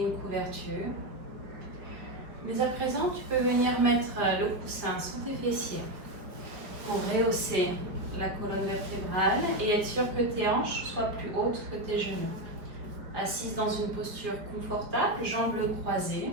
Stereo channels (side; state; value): left; late; 5.0 ms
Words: une couverture. Mais à présent, tu peux venir mettre le coussin sous tes fessiers pour rehausser la colonne vertébrale et être sûr que tes hanches soient plus hautes que tes genoux. Assise dans une posture confortable, jambes croisées,